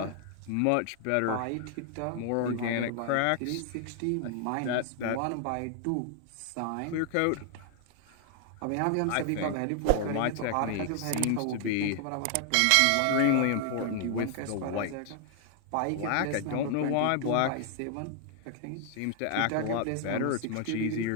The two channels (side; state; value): both; different; correlation 0.00